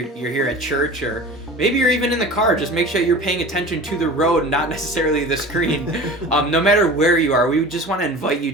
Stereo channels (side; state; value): both; normal; correlation 0.38